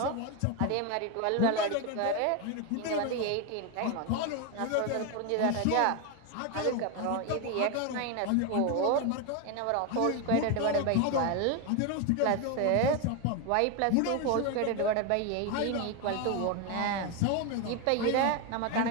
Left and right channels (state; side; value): different; both; correlation 0.02